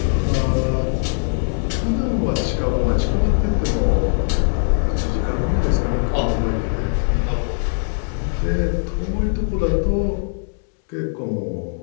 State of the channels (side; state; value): right; silent; digital silence